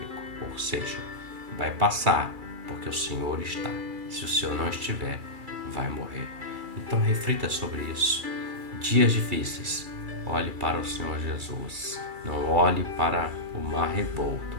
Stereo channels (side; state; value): left; late; 2.3 ms